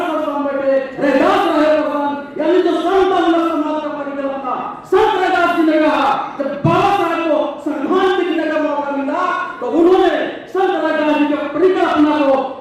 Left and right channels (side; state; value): both; identical; correlation 1.00